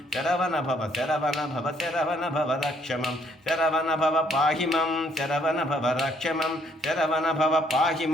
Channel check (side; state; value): both; normal; correlation 0.67